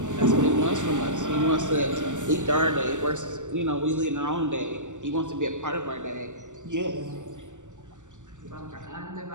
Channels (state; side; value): late; left; 0.85 ms